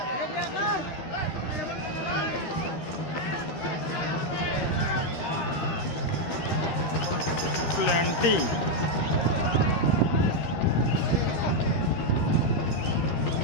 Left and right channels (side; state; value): right; late; 12 ms